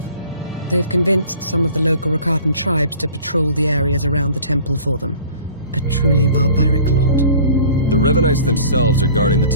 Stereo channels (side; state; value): both; inverted; correlation -0.46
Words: They've convinced some of the local Rakatan tribes to patrol the areas around the temple for them. A truly barbaric lot. The Revanites themselves are guarding the